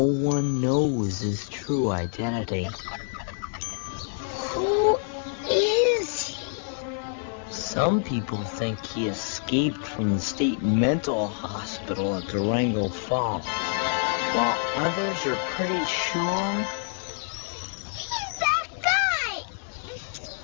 knows his true identity. Who is he? Some people think he escaped from the state mental hospital at Durango Falls, while others are pretty sure He's that guy!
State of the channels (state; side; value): silent; right; digital silence